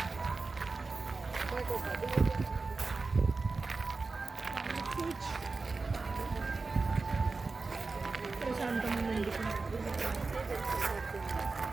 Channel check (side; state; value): left; quieter; 4.0 dB